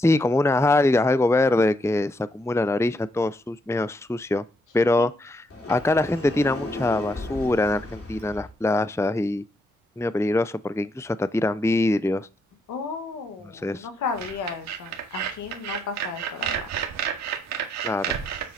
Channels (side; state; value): both; normal; correlation 0.77